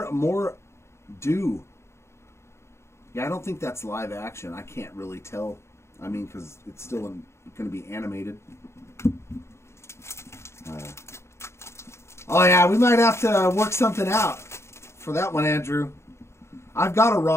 more due. Yeah, I don't think that's live action. I can't really tell. I mean, because it's still going to be animated. Oh, yeah, we might have to work something out for that one, Andrew. I've got a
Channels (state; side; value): late; right; 0.13 ms